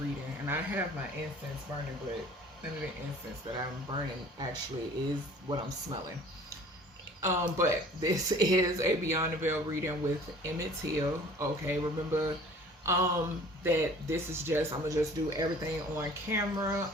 And I have my incense burning, but none of the incense that I'm burning actually is what I'm smelling. But this is a Beyond the Veil reading with Emmett. Okay, remember that this is just, I'm gonna just do everything on camera.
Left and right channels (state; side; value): normal; both; correlation 0.49